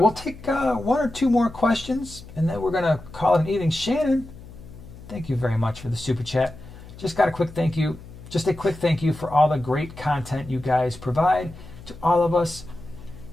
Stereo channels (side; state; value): left; noise; hum, 17 dB below the sound